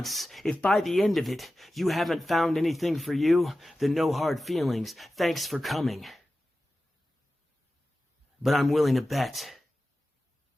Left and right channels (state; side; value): normal; both; correlation 0.94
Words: if by the end of it, you haven't found anything for you, then no hard feelings. Thanks for coming. But I'm willing to bet